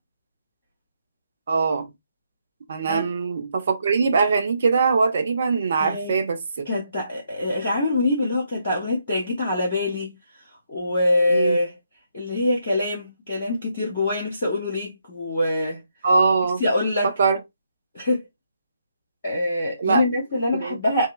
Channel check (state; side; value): inverted; both; correlation -0.77